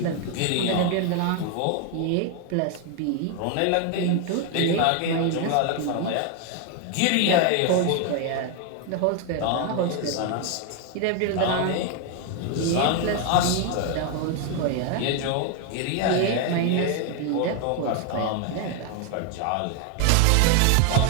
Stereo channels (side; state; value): both; different; correlation 0.01